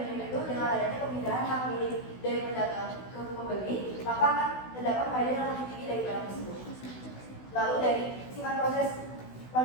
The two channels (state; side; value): late; right; 16 ms